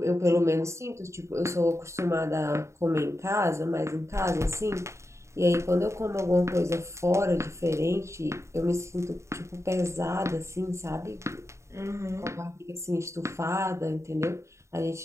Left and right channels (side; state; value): left; late; 0.14 ms